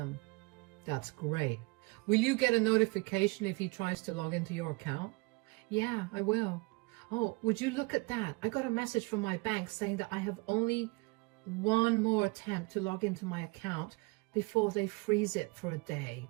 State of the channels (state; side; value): quieter; left; 27.2 dB